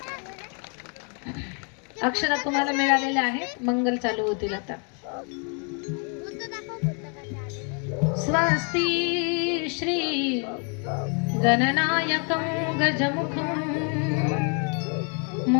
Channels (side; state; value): right; quieter; 38.1 dB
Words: अक्षरा तुम्हाला मिळालेल्या आहेत. मंगल चालू होतील आता. स्वस्ति श्री गणनायकं गजमुखं